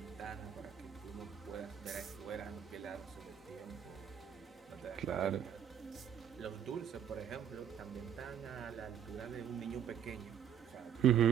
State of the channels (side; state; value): left; quieter; 8.9 dB